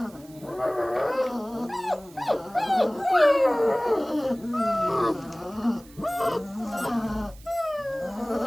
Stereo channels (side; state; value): right; noise; hiss, 24 dB below the sound